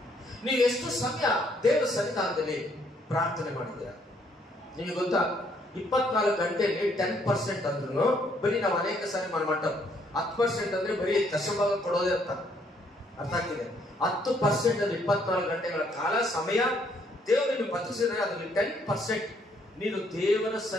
ನೀವು ಎಷ್ಟು ಸಮಯ ದೇವರ ಸನ್ನಿಧಾನದಲ್ಲಿ ಪ್ರಾರ್ಥನೆ ಮಾಡಿದ್ದೀರಾ? ನಿಮಗೆ ಗೊತ್ತಾ, 24 ಗಂಟೆಯಲ್ಲಿ 10% ಅಂದ್ರೂ ಬರೀ ನಾವು ಅನೇಕ ಸಾರಿ ಮಟ್ಟ 10% ಅಂದ್ರೆ ಬರೀ ದಶಭಾಗ ಕೊಡೋದೇ ಅರ್ಥ ಆಗ್ತಿದೆ. 10% ಅಲ್ಲಿ 24 ಗಂಟೆಗಳ ಕಾಲ ಸಮಯ ದೇವರನ್ನು ಬದುಕಿಸಿದ್ರೆ ಅದರಲ್ಲಿ 10% ನೀನು ದೇವರ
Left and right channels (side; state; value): both; normal; correlation 0.68